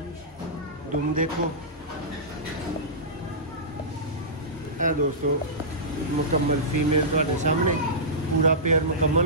दुम देखो है दोस्तों मुकम्मल फीमेल तुहाडे सामने, पूरा पेयर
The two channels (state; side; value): normal; both; correlation -0.17